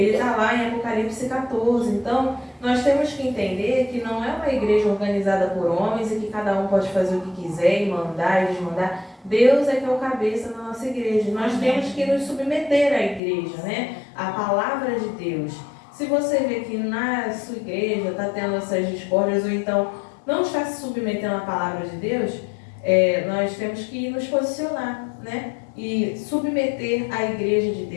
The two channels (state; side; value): drops out; right; at 13.2 s